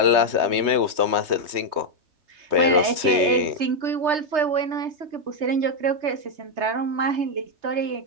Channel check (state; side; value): late; left; 3.2 ms